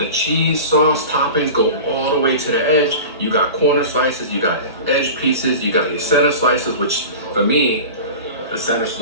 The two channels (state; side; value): inverted; both; correlation -0.33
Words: cheese, sauce, toppings go all the way to the edge. You got corner slices, you got edge pieces, you got your center slices, which for me, the center